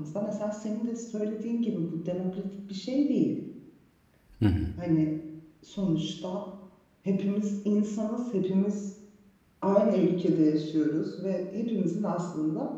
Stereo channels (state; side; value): identical; both; correlation 1.00